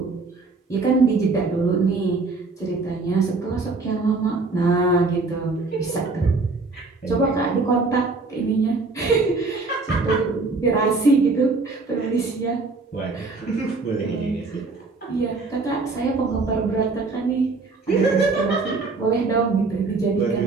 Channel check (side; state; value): left; quieter; 3.8 dB